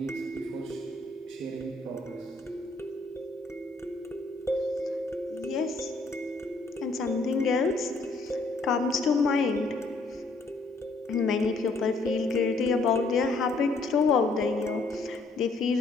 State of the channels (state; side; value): quieter; right; 3.3 dB